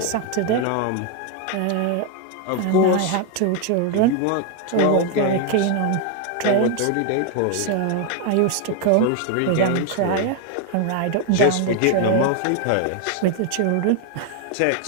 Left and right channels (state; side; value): different; both; correlation 0.01